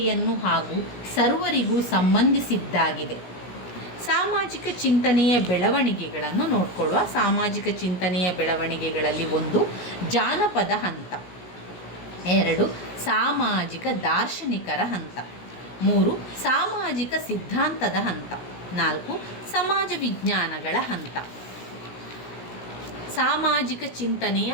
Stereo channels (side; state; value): right; late; 17 ms